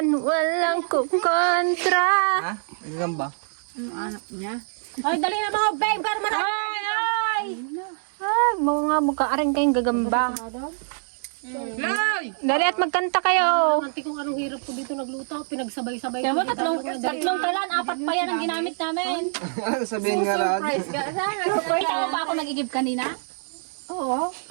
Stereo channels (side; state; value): left; silent; digital silence